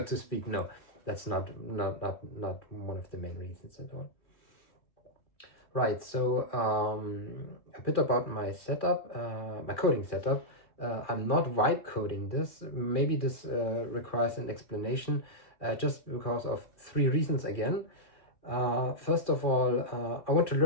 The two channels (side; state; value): right; late; 2.4 ms